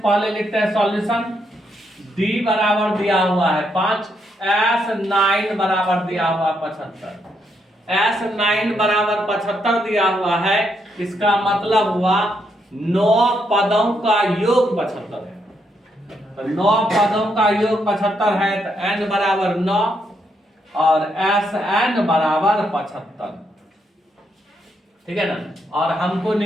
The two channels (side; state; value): both; normal; correlation 0.77